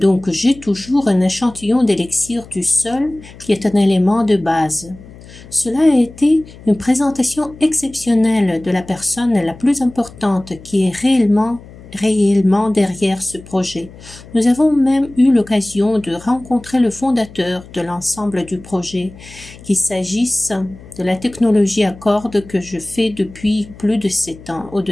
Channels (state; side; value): noise; left; hum, 19 dB below the sound